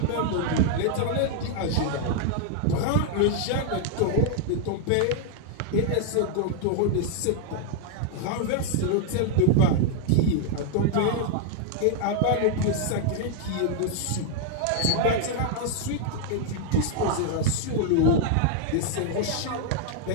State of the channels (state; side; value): different; both; correlation 0.00